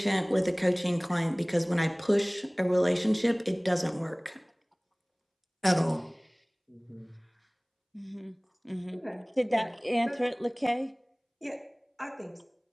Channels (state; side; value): identical; both; correlation 1.00